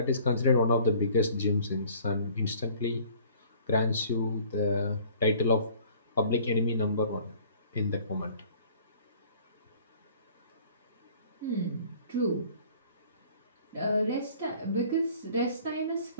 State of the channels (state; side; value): inverted; both; correlation -0.52